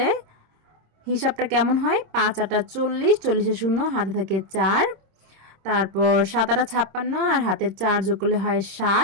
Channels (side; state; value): left; late; 26 ms